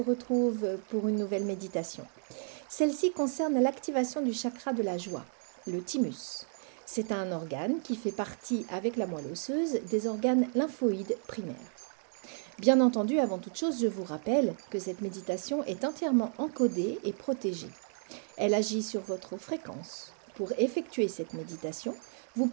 pour une nouvelle méditation. Celle-ci concerne l'activation du chakra de la joie, le thymus. C'est un organe qui fait partie avec la moelle osseuse des organes lymphoïdes primaires. Bien entendu, avant toute chose, je vous rappelle que cette méditation est entièrement encodée et protégée. Elle agit sur votre fréquence. Pour effectuer cette méditation, vous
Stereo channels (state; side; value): silent; left; 56 dB below the other